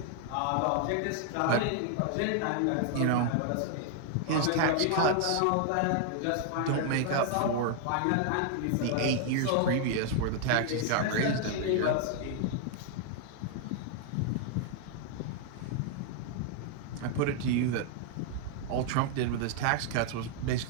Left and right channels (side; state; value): both; different; correlation 0.00